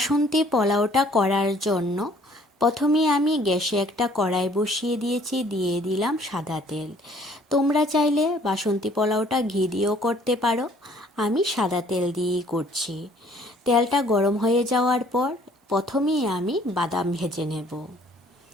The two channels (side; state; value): both; normal; correlation 0.58